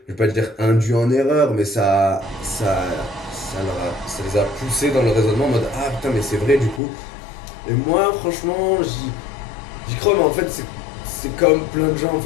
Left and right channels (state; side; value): drops out; right; at 6.8 s